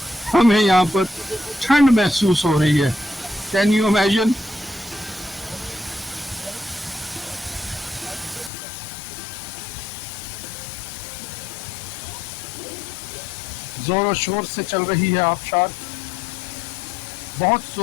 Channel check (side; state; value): right; drops out; at 8.5 s